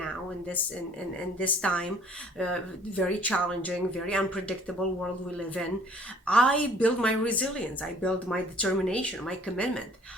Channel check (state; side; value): normal; both; correlation 0.55